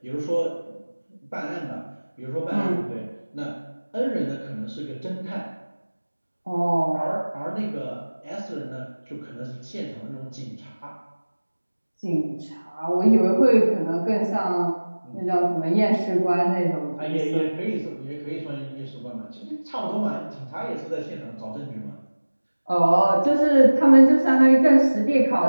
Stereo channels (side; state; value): both; inverted; correlation -1.00